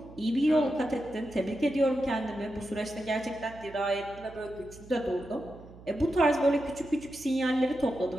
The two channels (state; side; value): noise; right; hum, 19 dB below the sound